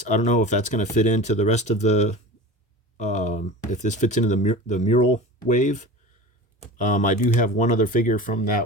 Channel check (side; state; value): both; normal; correlation 0.35